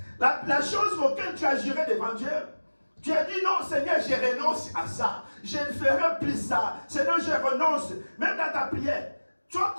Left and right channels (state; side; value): inverted; both; correlation -1.00